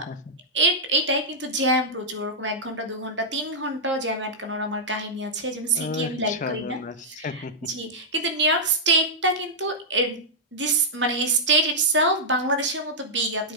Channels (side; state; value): both; normal; correlation -0.07